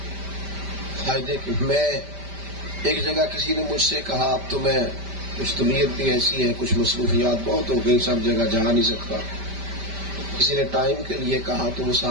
فائدے کی۔ میں ایک جگہ کسی نے مجھ سے کہا اب تو میں کچھ طبیعت بھی ایسی ہے، کچھ مصروفیات بہت ہو گئی، سب جگہ جا نہیں سکتا۔ کسی نے ٹائم کے لیے کہا تو وہ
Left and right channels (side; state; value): left; late; 5.1 ms